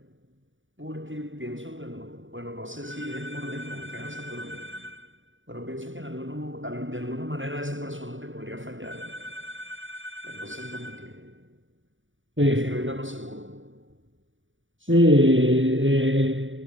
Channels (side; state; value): left; late; 0.56 ms